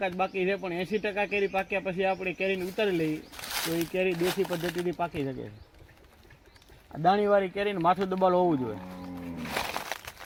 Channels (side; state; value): both; identical; correlation 1.00